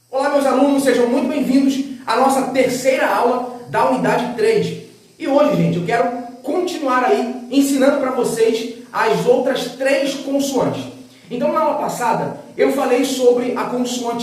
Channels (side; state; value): both; identical; correlation 1.00